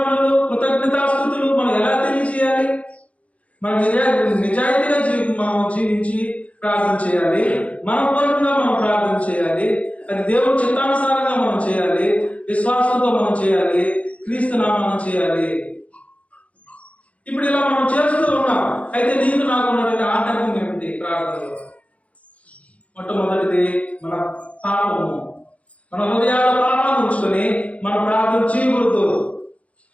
కృతజ్ఞతాస్తుతులు మనం ఎలా తెలియజేయాలి? మనం నిజాయితీగా మనం జీవించి ప్రార్థన చేయాలి. మనపూర్వకంగా మనం ప్రార్థన చేయాలి. అది దేవుడి చిత్తానుసారంగా మనం చేయాలి. విశ్వాసంతో మనం చేయాలి. క్రీస్తు నామమున చేయాలి. ఇప్పుడు ఇలా మనం చేస్తూ ఉన్నాం. అయితే నీకు నాకు ఉన్నటువంటి ఆటంకం ఏమిటి ప్రార్థనలో? మొట్టమొదటిది మన పాపము. మన హృదయాల పాపాన్ని ఉంచుకొని మన ప్రార్థన చేయకూడదు.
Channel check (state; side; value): late; right; 0.065 ms